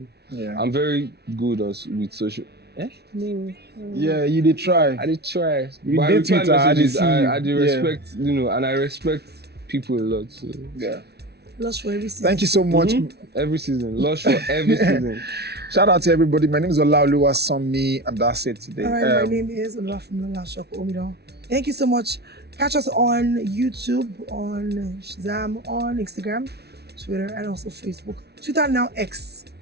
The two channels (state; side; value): late; left; 0.48 ms